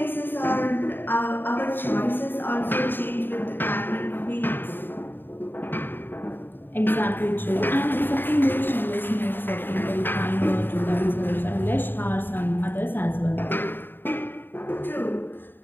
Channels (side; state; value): right; late; 0.095 ms